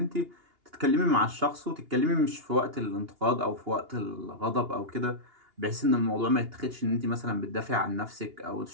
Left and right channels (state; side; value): late; left; 2.8 ms